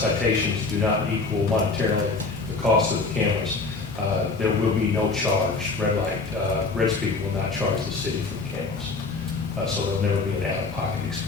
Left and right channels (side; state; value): right; quieter; 3.9 dB